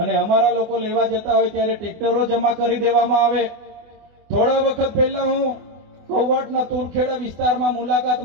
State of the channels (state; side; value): late; left; 24 ms